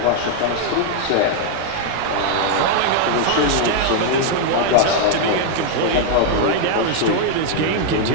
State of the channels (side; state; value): both; different; correlation 0.00